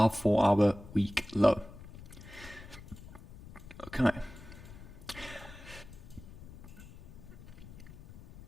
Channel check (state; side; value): noise; left; rumble, 16 dB below the sound